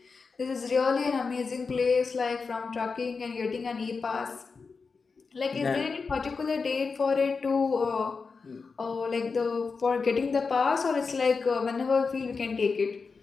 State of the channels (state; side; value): quieter; right; 4.8 dB